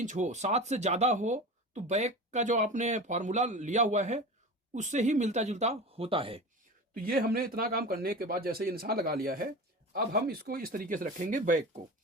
हो, 7 से ज़्यादा हो तो बैक का जो आपने फार्मूला लिया हुआ है उससे ही मिलता जुलता होता है। तो ये हमने इतना काम करने के बाद जैसे ये निशान लगा लिया है, अब हम इसको इस तरीके से रखेंगे।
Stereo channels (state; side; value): normal; both; correlation 0.31